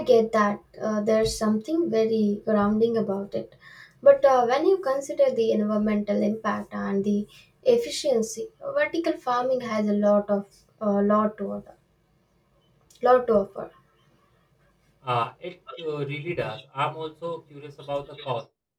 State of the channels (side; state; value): both; identical; correlation 1.00